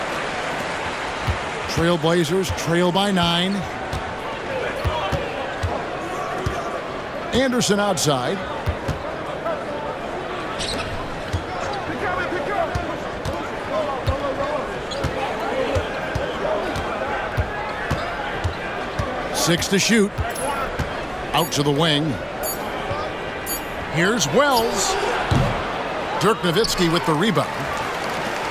Trailblazers trail by 9. Anderson outside. Six to shoot. Out to the wing. Here's Wells. Dirk Nowitzki with the rebound.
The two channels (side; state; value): both; identical; correlation 1.00